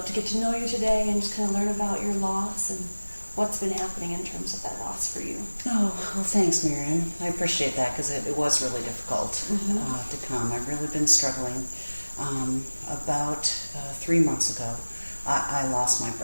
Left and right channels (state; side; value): inverted; both; correlation -1.00